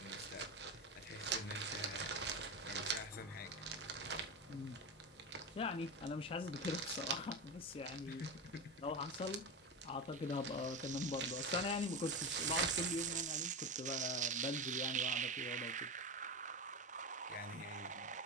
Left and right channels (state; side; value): normal; both; correlation 0.20